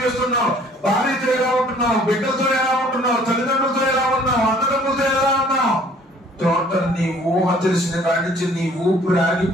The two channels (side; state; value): both; normal; correlation 0.56